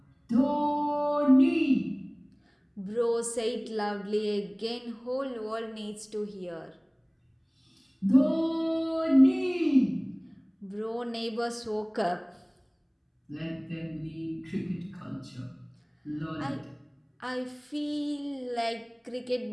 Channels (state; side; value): identical; both; correlation 1.00